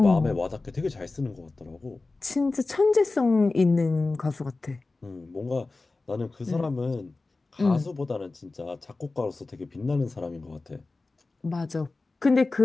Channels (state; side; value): quieter; right; 3.4 dB